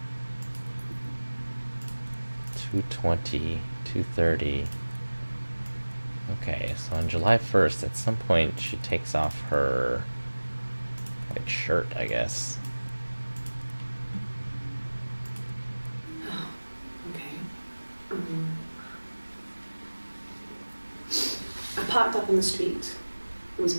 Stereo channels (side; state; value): both; inverted; correlation -1.00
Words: $220, $230. Okay, so on July 1st, at some point, she takes off her white shirt, I guess. Okay. I parked up on the street. It was